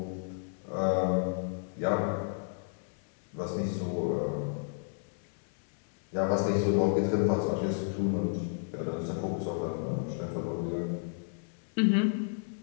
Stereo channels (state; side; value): silent; right; digital silence